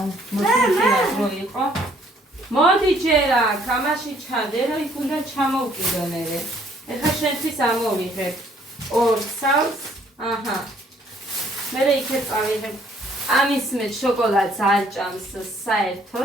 მოსულიყო რო იყო. მოდი ჯერა, კამაში ჩადე, რომ იქ უნდა ჩამოვკიდო მე. ეხლა შენთვის ამოვიღებ. ორ სავს. აჰა. მე იქეთ წავიღებ. ამის მე შოკოლადს არ ჭამს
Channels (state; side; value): normal; both; correlation 0.63